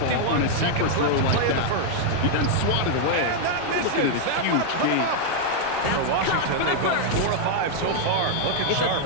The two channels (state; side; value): different; both; correlation 0.00